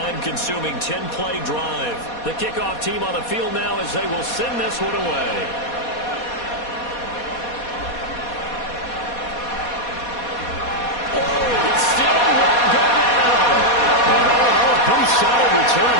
10-play drive. The kickoff team on the field now as they will send this one away. It still won't go down. And pretty solid return.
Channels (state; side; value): late; right; 4.2 ms